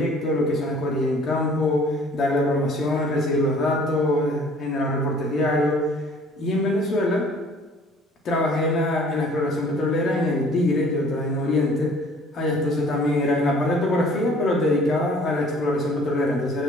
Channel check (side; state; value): both; normal; correlation 0.53